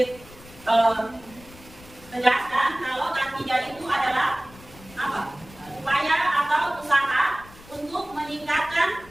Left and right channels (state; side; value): noise; left; rumble, 21 dB below the sound